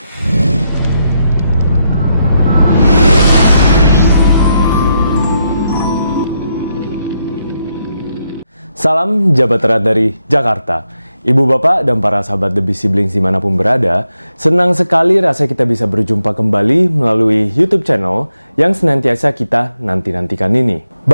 Salam Jabat Erat dari Jakarta. Ibu bapak dan para sahabat The Busy Blinks dimanapun berada, senang sekali rasanya kita bisa berjumpa kembali melalui YouTube channel yang senantiasa kita nanti-nantikan ini.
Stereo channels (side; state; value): both; inverted; correlation -0.81